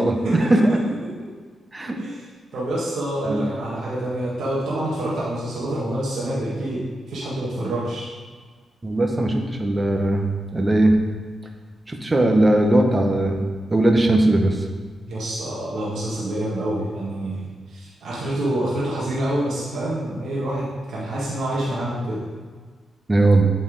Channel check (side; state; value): both; normal; correlation 0.89